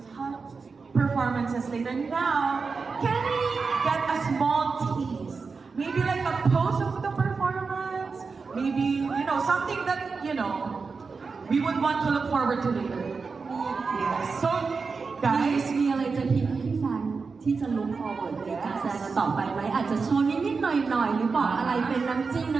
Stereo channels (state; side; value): quieter; left; 4.7 dB